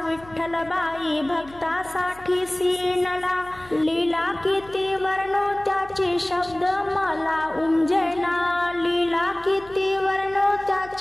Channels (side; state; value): left; noise; hum, 22 dB below the sound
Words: विठ्ठल बाई भक्तासाठी सीनला, लीला किती वर्णो त्याचे शब्द मला उमजेना, लीला किती वर्णो